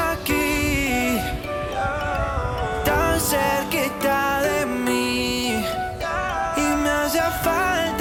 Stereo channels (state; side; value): identical; both; correlation 1.00